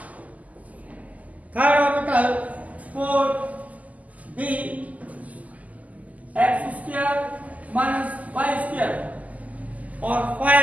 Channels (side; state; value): left; late; 0.075 ms